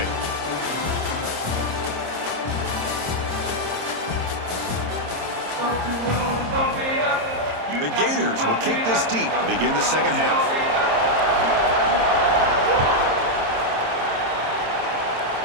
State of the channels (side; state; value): left; late; 26 ms